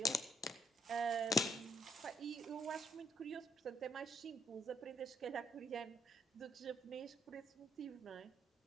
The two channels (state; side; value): normal; both; correlation 0.71